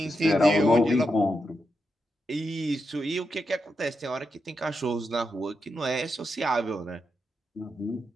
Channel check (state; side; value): normal; both; correlation 0.85